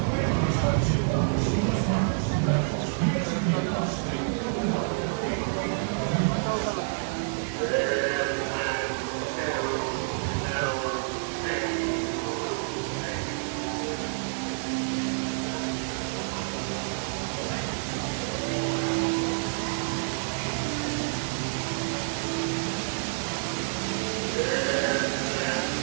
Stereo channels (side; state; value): left; silent; digital silence